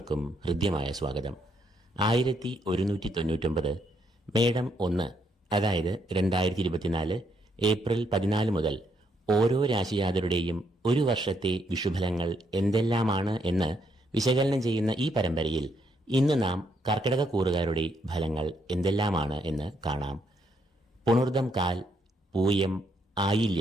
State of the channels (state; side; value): normal; both; correlation 0.75